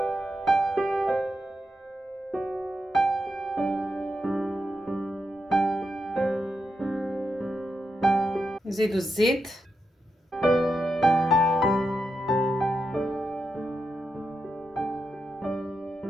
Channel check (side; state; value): both; normal; correlation 0.86